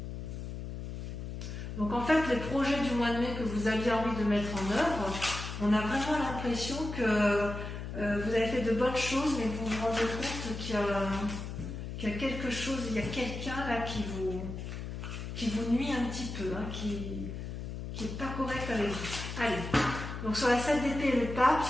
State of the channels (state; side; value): noise; left; hum, 7 dB below the sound